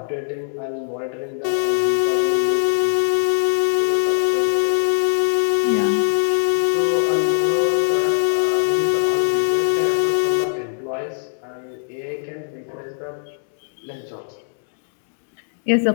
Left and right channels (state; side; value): silent; right; digital silence